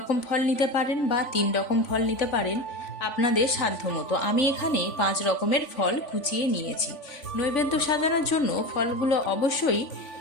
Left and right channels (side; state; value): right; late; 3.5 ms